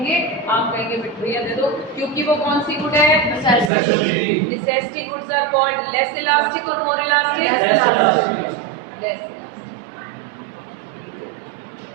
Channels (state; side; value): drops out; left; at 3.7 s